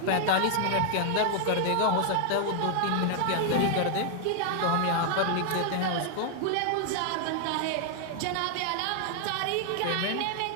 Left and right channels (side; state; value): both; different; correlation 0.00